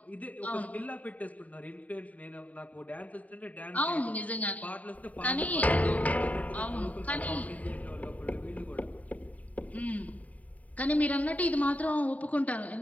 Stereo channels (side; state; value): right; late; 0.071 ms